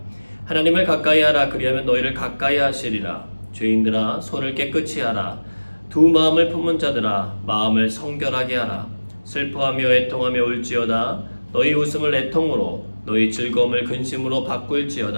하나님을 가까이 하라. 그리하면 너희를 가까이 하시리라. 죄인들아, 손을 깨끗이 하라. 두 마음을 품은 자들아, 마음을 성결하게 하라. 슬퍼하며 애통하며 울지어다. 너희 웃음을 애통으로, 너희 즐거움을 근심으로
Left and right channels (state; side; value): inverted; both; correlation -1.00